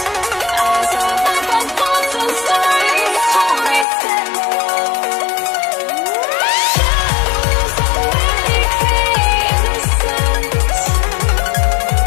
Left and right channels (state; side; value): drops out; right; at 3.9 s